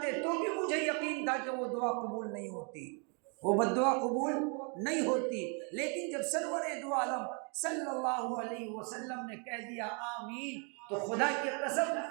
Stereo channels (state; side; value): quieter; left; 37.4 dB